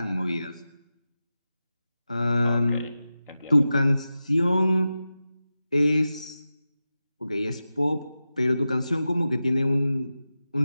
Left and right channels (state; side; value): inverted; both; correlation -0.93